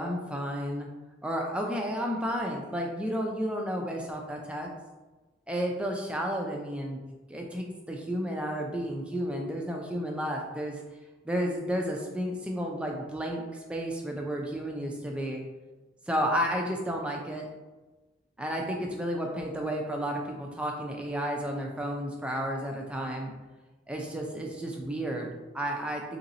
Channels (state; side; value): normal; both; correlation 0.62